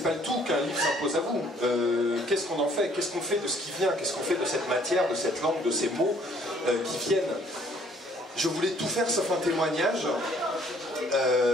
le tout qu'un livre s'impose à vous. Qu'est-ce qu'on en fait? Qu'est-ce qu'on fait de ce qui vient? Qu'est-ce qu'on fait de cette matière, de cette langue, de ces mots qui viennent? Je voulais tout faire sauf un témoignage.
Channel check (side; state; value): both; normal; correlation 0.60